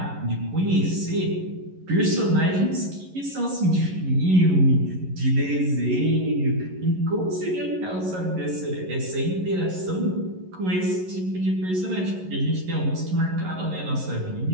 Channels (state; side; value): late; left; 11 ms